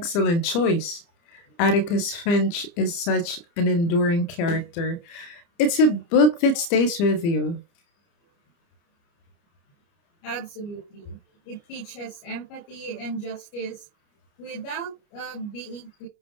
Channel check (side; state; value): right; late; 29 ms